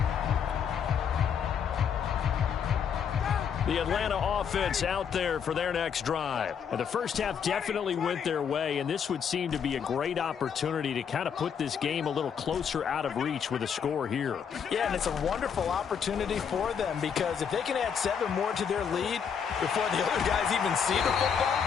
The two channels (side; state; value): right; quieter; 7.3 dB